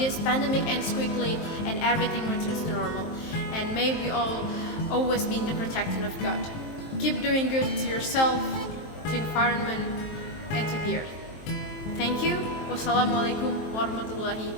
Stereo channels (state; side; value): late; right; 23 ms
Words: pandemic ends quickly and everything returns to normal. And may we all always be in the protection of God. Keep doing good to yourself, to environment, and to the earth. Thank you. Wassalamualaikum warahmatullahi